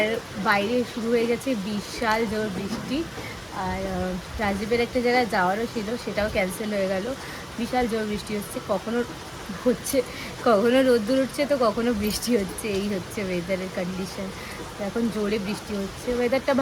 বাইরে শুরু হয়ে গেছে বিশাল জোর বৃষ্টি। আর রাজীবের একটা জায়গায় যাওয়ারও ছিল, সেটাও ক্যান্সেল হয়ে গেল। বিশাল জোর বৃষ্টি হচ্ছে, কখনো রোদ্দুর উঠছে তো কখনো বৃষ্টি হচ্ছে, এই হচ্ছে ওয়েদারের কন্ডিশন। এখন জোরে বৃষ্টি হচ্ছে, ওয়েদারটা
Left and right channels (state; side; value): identical; both; correlation 1.00